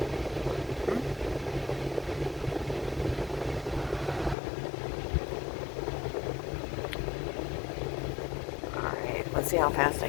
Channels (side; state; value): right; drops out; at 4.4 s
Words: Alright, let's see how fast I